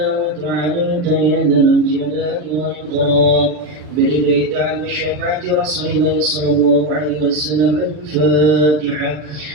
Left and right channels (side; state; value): left; late; 40 ms